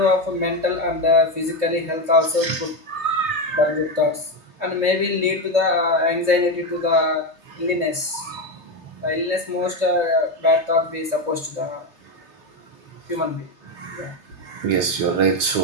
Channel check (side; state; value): left; late; 3.3 ms